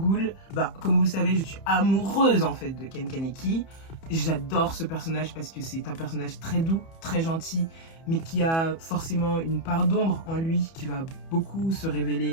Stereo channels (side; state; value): right; late; 31 ms